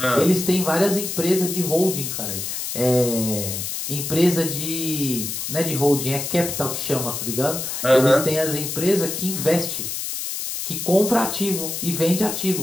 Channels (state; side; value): noise; left; hiss, 4 dB below the sound